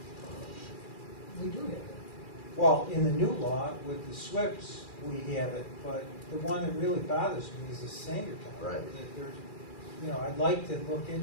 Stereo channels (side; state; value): right; late; 2.4 ms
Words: We do have that. Well, in the new law with the SWIPs, we have it, but the one that really bothers me is the Sangertown. Right. That there's, I'd like to look